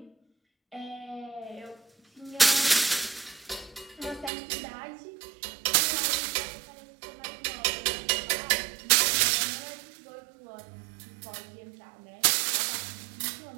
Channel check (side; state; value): left; drops out; at 4.3 s